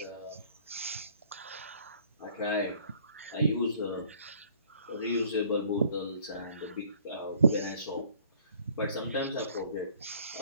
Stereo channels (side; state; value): both; inverted; correlation -0.56